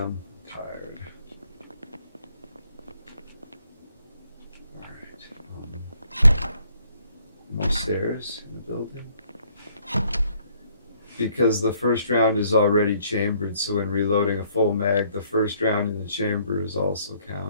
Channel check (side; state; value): both; inverted; correlation -0.66